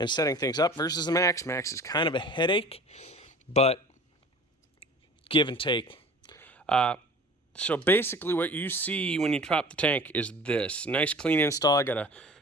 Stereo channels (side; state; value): both; normal; correlation 0.43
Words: setting things up versus the Max. Max is kind of a headache, but give and take. So basically what you see when you drop the tank is this. Nice clean install. I got a